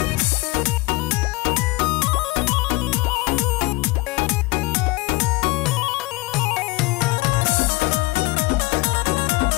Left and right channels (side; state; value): right; quieter; 22.6 dB